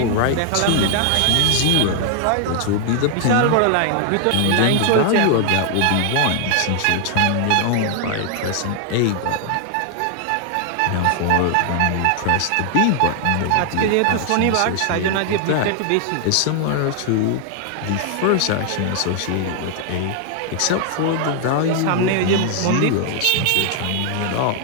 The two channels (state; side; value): different; both; correlation 0.00